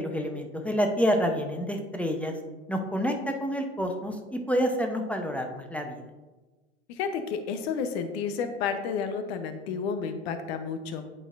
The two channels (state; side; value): normal; both; correlation 0.57